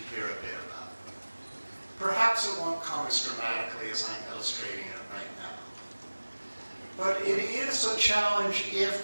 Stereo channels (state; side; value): inverted; both; correlation -1.00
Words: hear a bit about. Perhaps it won't come as dramatically as I'm illustrating it right now. But it is a challenge